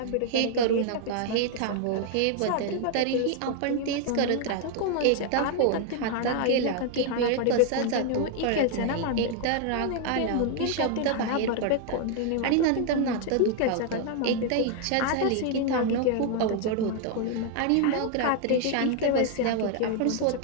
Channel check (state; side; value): different; both; correlation 0.00